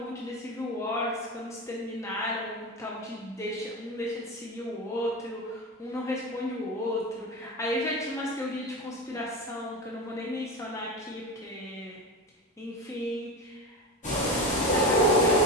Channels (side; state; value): both; normal; correlation 0.23